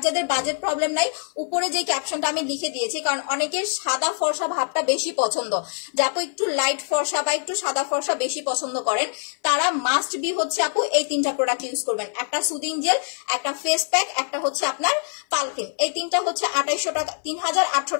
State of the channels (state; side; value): silent; right; 57 dB below the other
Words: যাদের বাজেট প্রবলেম নাই, উপরে যে ক্যাপশনটা আমি লিখে দিয়েছি, কারণ অনেকের সাদা ফর্সা ভাবটা বেশি পছন্দ, যে আপু একটু লাইট ফর্সা বা একটু সাদা ফর্সা বেশি পছন্দ করেন, তারা মাস্ট বি হচ্ছে আপু এই 3টা প্রোডাক্ট ইউজ করবেন। একটা সুদিং জেল, একটা ফেস প্যাক, একটা হচ্ছে আপনার পাল ক্রিম। এই 3টা হচ্ছে 2800 টাকা, 3800